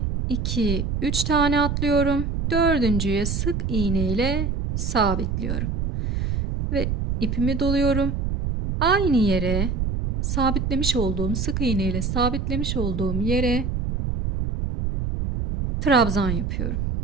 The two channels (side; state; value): right; noise; rumble, 1 dB below the sound